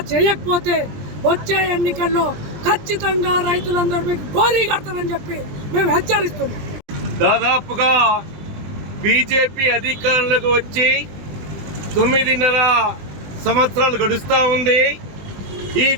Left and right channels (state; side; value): late; left; 20 ms